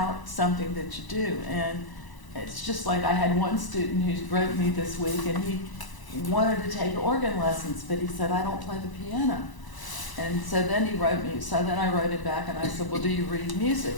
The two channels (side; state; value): right; late; 1.0 ms